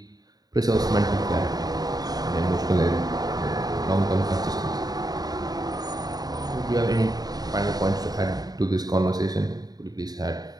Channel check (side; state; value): left; late; 0.19 ms